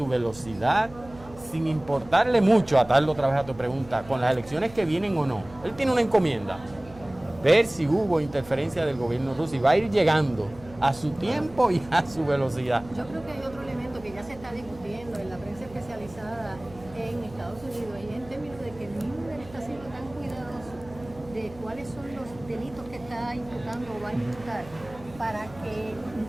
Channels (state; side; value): noise; right; hum, 20 dB below the sound